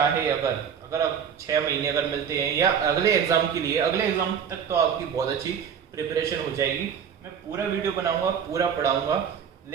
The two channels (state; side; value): quieter; left; 7.6 dB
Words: अगर आप 6 महीने अगर मिलते हैं या अगले एग्जाम के लिए, अगले एग्जाम तक तो आपकी बहुत अच्छी प्रिपरेशन हो जाएगी। मैं पूरा वीडियो बनाऊंगा, पूरा पढ़ाऊंगा,